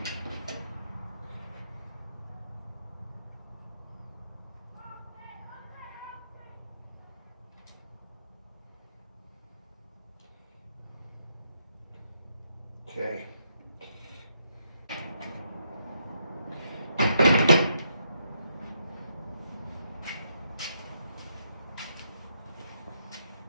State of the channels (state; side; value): inverted; both; correlation -0.78